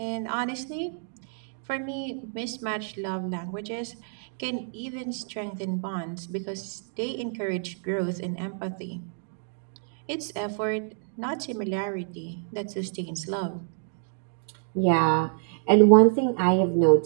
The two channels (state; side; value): silent; left; 60 dB below the other